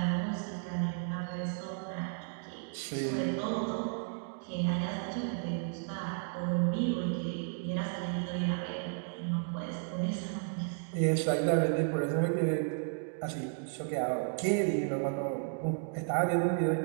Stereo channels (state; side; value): silent; left; 55 dB below the other